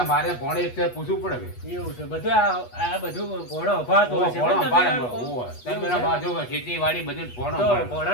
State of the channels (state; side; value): late; right; 8.3 ms